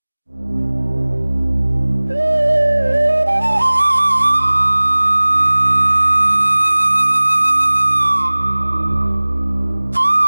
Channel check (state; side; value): inverted; both; correlation -1.00